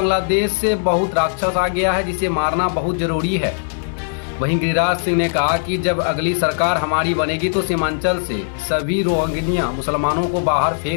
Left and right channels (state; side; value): silent; right; digital silence